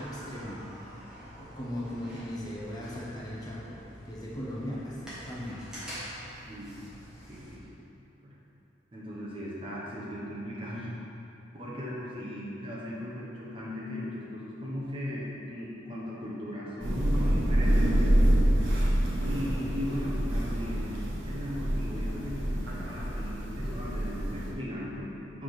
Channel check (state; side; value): normal; both; correlation 0.92